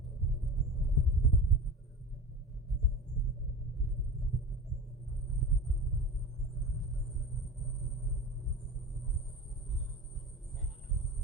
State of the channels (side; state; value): both; normal; correlation 0.32